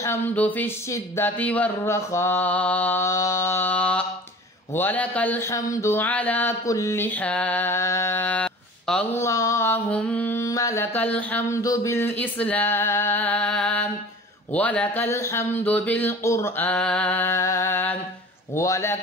في الشدة والرخاء، ولك الحمد على كل حال. اللهم لك الحمد بالإسلام، ولك الحمد بالقرآن،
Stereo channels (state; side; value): normal; both; correlation 0.42